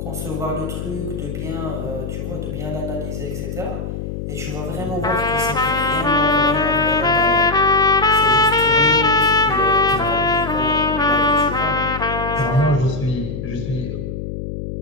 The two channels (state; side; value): noise; left; hum, 6 dB below the sound